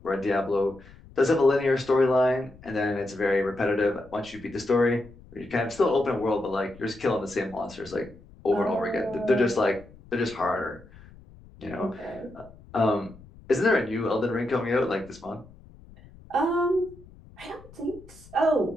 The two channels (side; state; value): left; noise; rumble, 22 dB below the sound